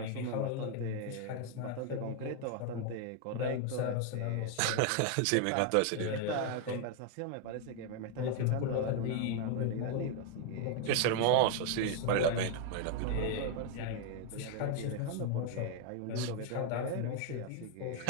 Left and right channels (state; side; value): different; both; correlation 0.00